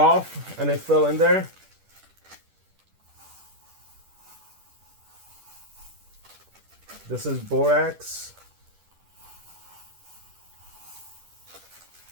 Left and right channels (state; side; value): late; left; 10 ms